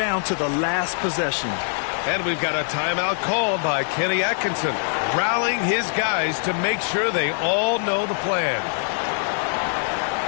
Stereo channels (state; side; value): silent; right; digital silence